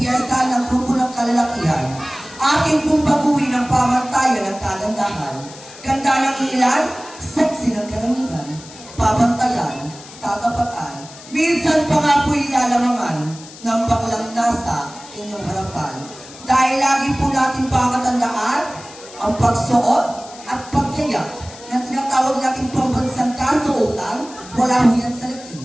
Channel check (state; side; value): noise; left; hiss, 18 dB below the sound